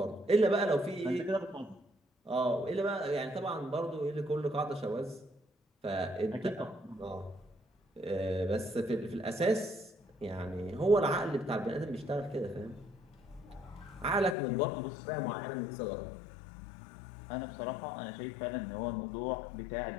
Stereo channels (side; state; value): right; drops out; at 14.4 s